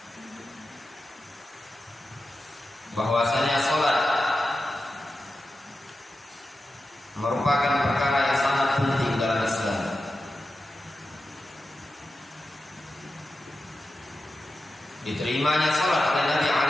bahwasanya salat merupakan perkara yang sangat penting dalam Islam. Diterimanya salat oleh Nabi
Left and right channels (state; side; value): normal; both; correlation 0.92